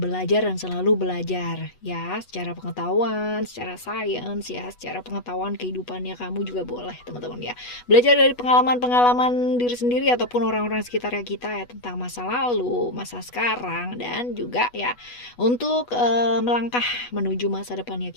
belajar dan selalu belajar ya, secara pengetahuan, secara sains ya, secara pengetahuan kehidupannya kamu juga boleh teman-teman ya. Belajar dari pengalaman-pengalaman diri sendiri ataupun orang-orang sekitar kita ya, tentang masa lalu, masa sekarang, dan juga ya untuk melangkah menuju masa depannya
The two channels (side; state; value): right; late; 8.2 ms